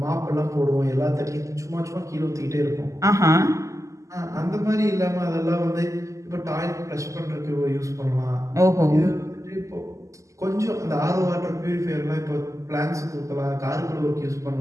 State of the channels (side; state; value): left; late; 0.16 ms